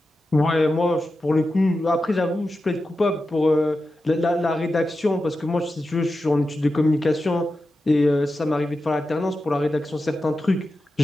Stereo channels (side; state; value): both; normal; correlation 0.91